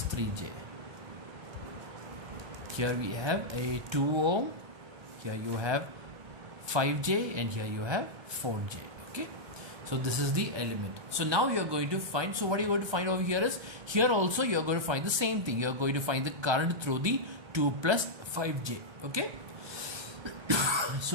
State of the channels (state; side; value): late; left; 1.2 ms